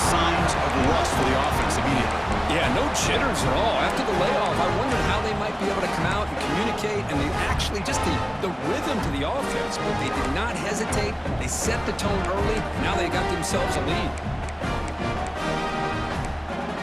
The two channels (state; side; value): identical; both; correlation 1.00